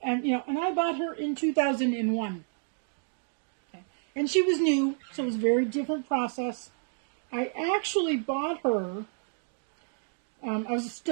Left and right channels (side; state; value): left; silent; 58 dB below the other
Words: and you know, and I bought her in 2001. Okay. And she was new, so it was a very different process. I actually bought her. I was